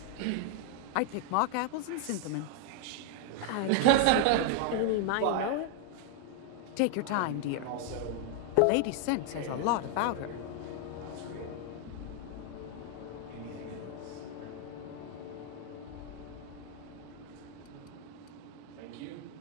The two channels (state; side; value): different; both; correlation 0.00